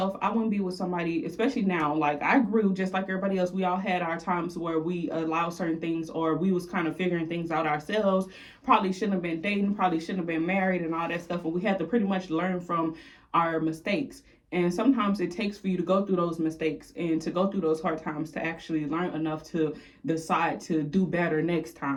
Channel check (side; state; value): both; identical; correlation 1.00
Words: I wouldn't be with somebody, especially now. Like, I grew just like everybody else. We all had our times where we allowed certain things, or we was kind of figuring things out ourselves. Probably shouldn't have been dating, probably shouldn't have been married and all that stuff. But we had to pretty much learn from our mistakes. And sometimes it takes for you to go through those mistakes and to go through those hard times to actually learn enough to decide to do better next